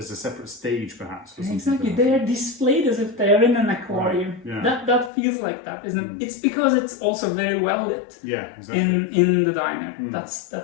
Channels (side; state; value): right; drops out; at 5.1 s